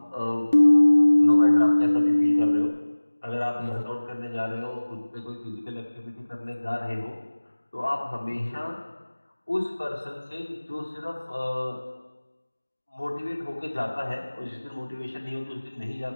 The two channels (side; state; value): both; inverted; correlation -1.00